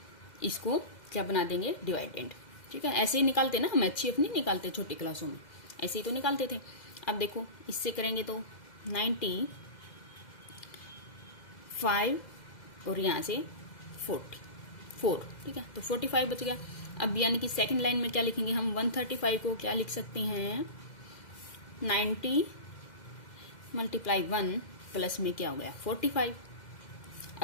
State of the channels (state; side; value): late; right; 2.0 ms